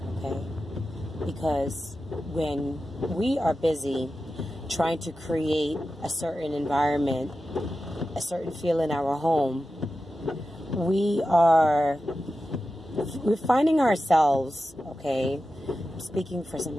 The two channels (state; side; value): normal; both; correlation 0.92